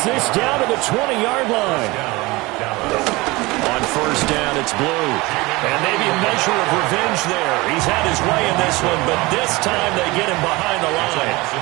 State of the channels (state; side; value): quieter; left; 22.5 dB